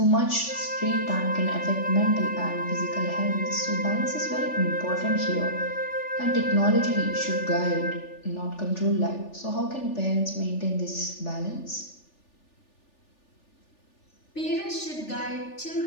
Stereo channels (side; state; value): right; late; 3.4 ms